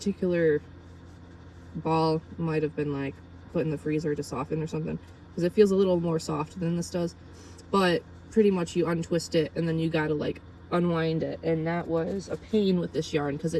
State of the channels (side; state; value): both; identical; correlation 1.00